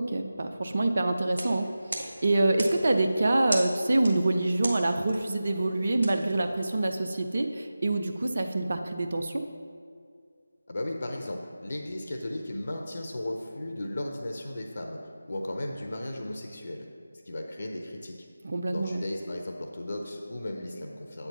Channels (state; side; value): inverted; both; correlation -0.95